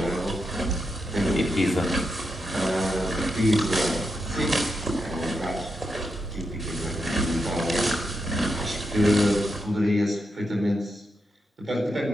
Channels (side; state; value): both; normal; correlation 0.85